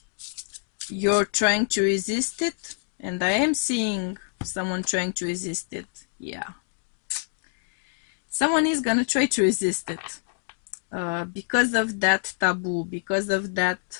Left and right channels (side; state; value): right; silent; digital silence